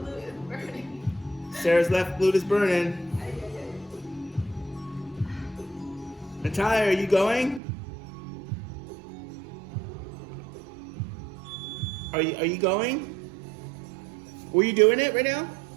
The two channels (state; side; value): drops out; left; at 7.6 s